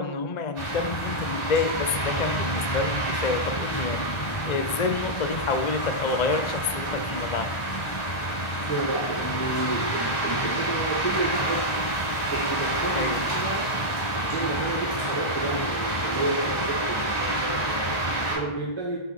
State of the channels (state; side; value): late; right; 1.3 ms